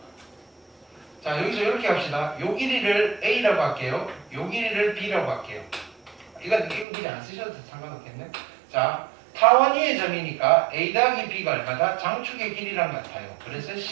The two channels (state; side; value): drops out; left; at 6.9 s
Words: 자, 여기서 이렇게 합시다. 요 길이를 A라고 할게요. 요 길이를 B라고 할게요. 이건 길이 안 쓰셔도 상관없겠네. 자, 타원위의 점이니까 A 더하기 B가 얼마다? 장축의 길이랑 같아요. 그래서